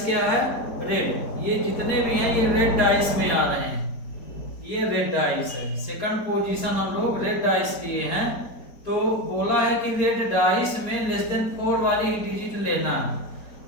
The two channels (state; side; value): late; right; 4.3 ms